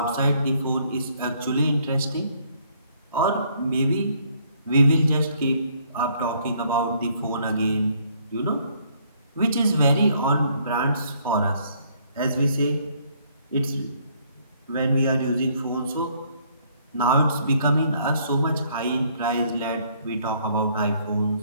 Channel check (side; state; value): both; inverted; correlation -0.65